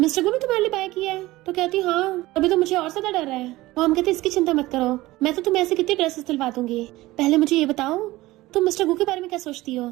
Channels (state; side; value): quieter; left; 18.4 dB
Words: गु भी तुम्हारे लिए बाय किया है? तो कहती हाँ, अभी तो मुझे और ज्यादा डर है। मॉम कहती इसकी चिंता मत करो, मैं तो तुम्हें ऐसे कितने ड्रेसेस दिलवा दूंगी। पहले मुझे ये बताओ तुम मिस्टर गु के बारे में क्या सोचती हो?